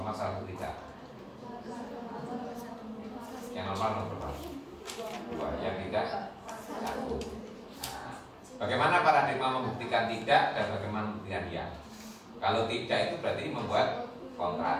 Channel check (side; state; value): both; identical; correlation 1.00